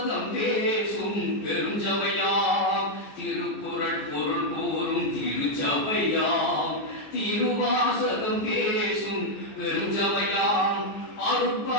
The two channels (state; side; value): late; right; 14 ms